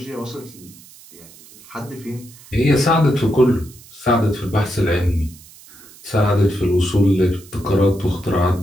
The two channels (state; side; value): noise; right; hiss, 22 dB below the sound